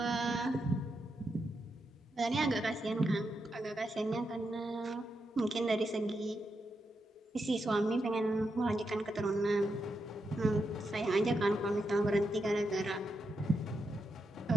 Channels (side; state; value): both; normal; correlation 0.85